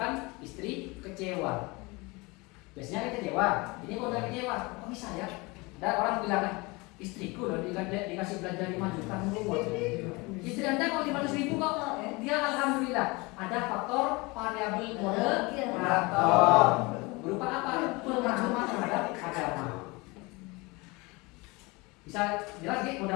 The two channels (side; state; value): right; quieter; 25.3 dB